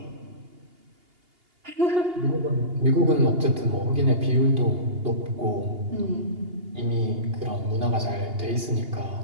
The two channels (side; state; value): left; late; 2.8 ms